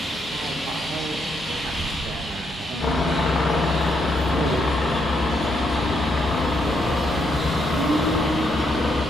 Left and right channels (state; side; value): normal; both; correlation 0.77